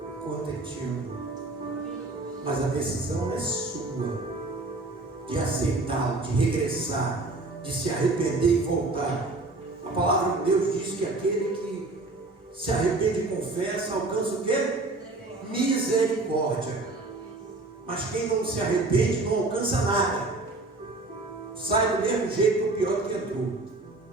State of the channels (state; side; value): quieter; left; 3.1 dB